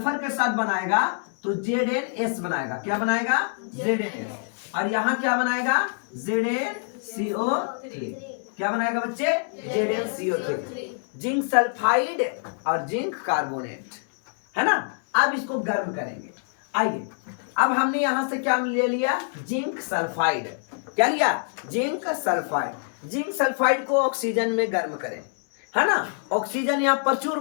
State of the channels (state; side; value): silent; right; 61 dB below the other